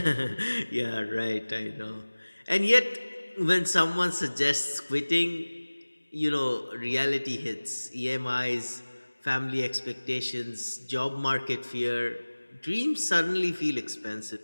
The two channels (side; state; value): both; inverted; correlation -1.00